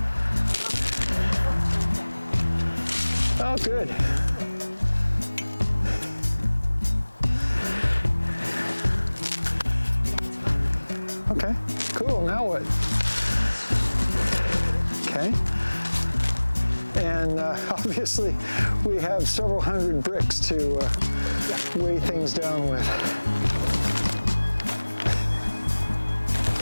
Oh, good. Okay, cool. Now what? Okay. And obviously, we have several hundred bricks to weigh things down with.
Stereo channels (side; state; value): both; inverted; correlation -1.00